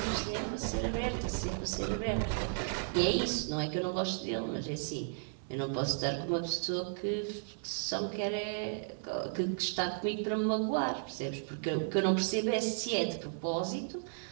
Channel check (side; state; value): left; silent; 55 dB below the other